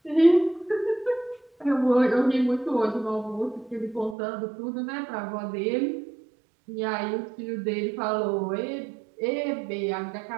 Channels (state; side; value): drops out; left; at 4.2 s